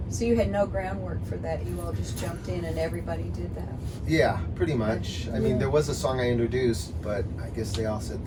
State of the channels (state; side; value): identical; both; correlation 1.00